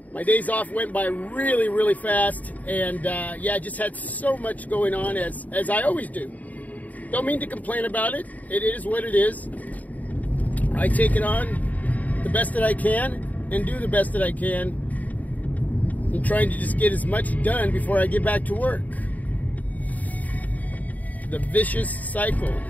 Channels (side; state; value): right; late; 0.075 ms